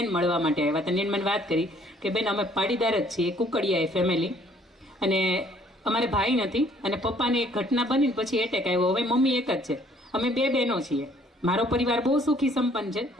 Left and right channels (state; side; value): normal; both; correlation 0.61